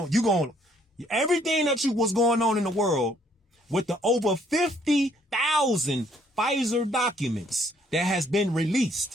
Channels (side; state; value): both; normal; correlation 0.65